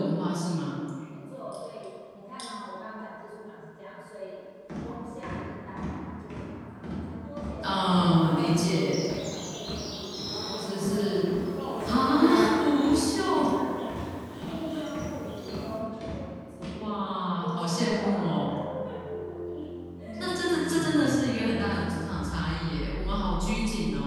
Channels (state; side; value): identical; both; correlation 1.00